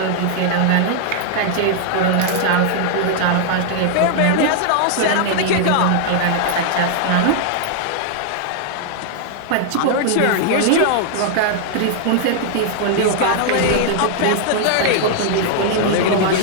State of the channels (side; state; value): both; different; correlation 0.00